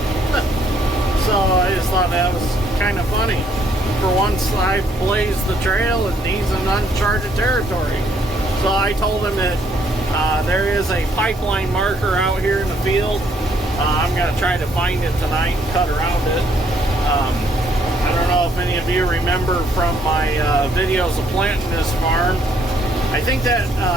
So I just thought that was kind of funny. For once I blazed the trail and he's in uncharted territory. So I told him that there is a pipeline marker out here in the field. I'm going to try to find it tonight and cut around it. I don't know if any of you remember from my videos of planting this farm. I think that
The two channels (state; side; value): normal; both; correlation 0.68